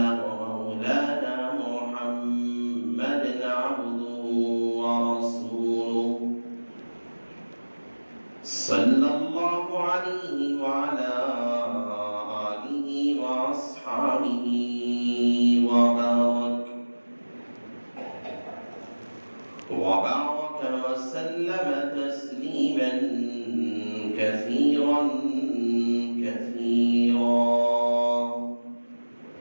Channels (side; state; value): both; inverted; correlation -1.00